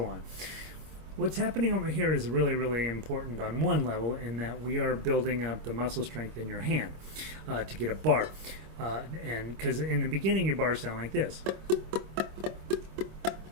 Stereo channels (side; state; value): left; late; 26 ms